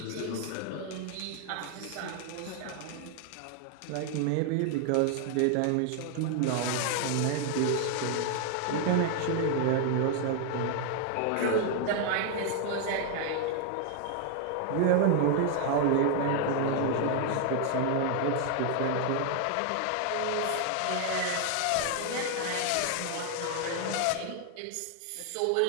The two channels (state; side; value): different; both; correlation 0.00